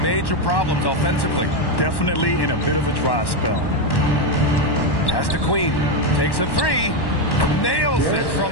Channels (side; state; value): right; late; 1.1 ms